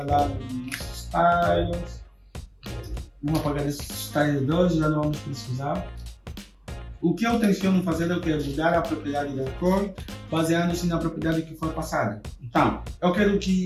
lá nos styles. Vamos apagar esse style 2, já não vamos precisar. O que eu tenciono fazer é mudar a propriedade da cor, baseando-se na propriedade que for passada. Então, eu quero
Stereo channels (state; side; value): identical; both; correlation 1.00